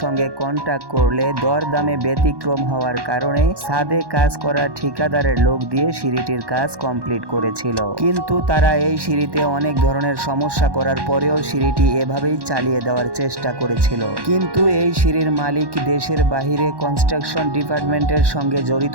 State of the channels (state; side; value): late; left; 1.1 ms